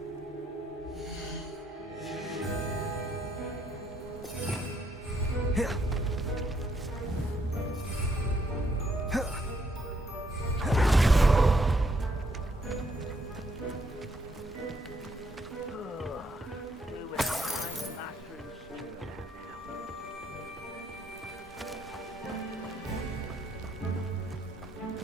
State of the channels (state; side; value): normal; both; correlation 0.72